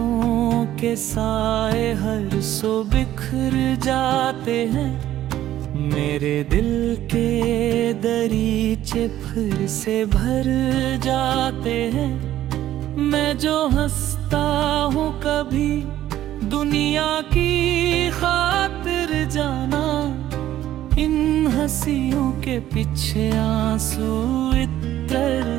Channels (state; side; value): quieter; left; 13.0 dB